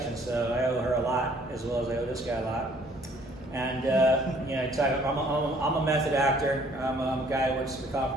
So I owe her a lot, as well as I owe this guy a lot. And I'm a method actor. I'm a guy who works for the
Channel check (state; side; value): normal; both; correlation 0.59